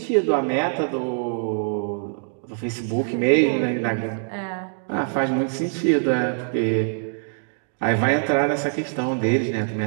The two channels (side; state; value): left; silent; digital silence